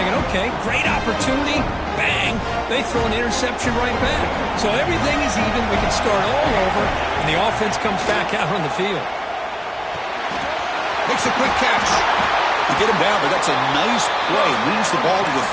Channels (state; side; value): identical; both; correlation 1.00